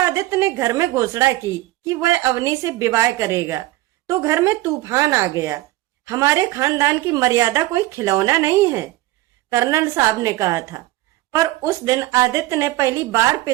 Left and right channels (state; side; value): quieter; left; 17.5 dB